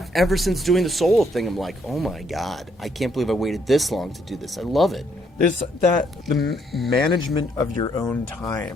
since doing the solo thing, I'm like, oh my God, I can't believe I waited this long to do this. I love it. There's the management of your own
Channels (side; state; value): both; normal; correlation 0.71